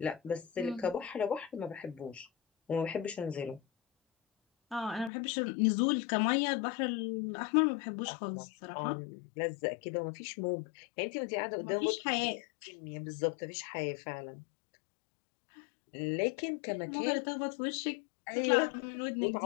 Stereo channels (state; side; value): drops out; right; at 5.1 s